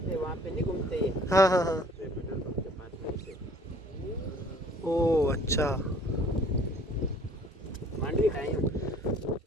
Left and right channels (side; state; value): both; normal; correlation 0.54